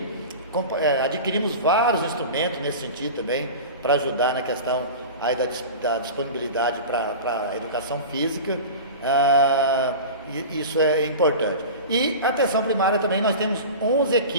Adquirimos vários instrumentos nesse sentido também, para ajudar na questão aí da disponibilidade para a educação física, isso é importante. E a atenção primária também, nós temos 11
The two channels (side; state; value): both; inverted; correlation -0.32